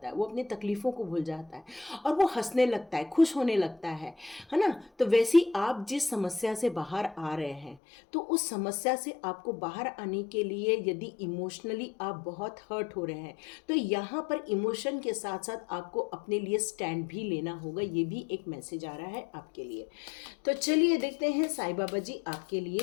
है, वो अपनी तकलीफ़ों को भूल जाता है और वो हंसने लगता है, खुश होने लगता है ना। तो वैसे ही आप जिस समस्या से बाहर आ रहे हैं, तो उस समस्या से आपको बाहर आने के लिए यदि इमोशनली आप बहुत हर्ट हो रहे हैं, तो यहाँ पर इमोशन के साथ साथ आपको अपने लिए स्टैंड भी लेना होगा। ये भी एक मैसेज आ रहा है आपके लिए। तो चलिए देखते हैं साईं बाबा जी आपके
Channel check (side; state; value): right; drops out; at 7.8 s